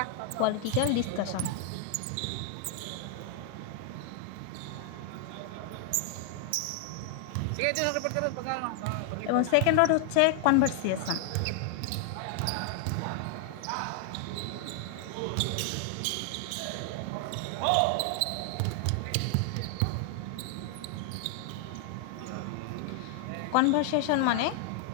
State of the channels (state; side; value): different; both; correlation 0.00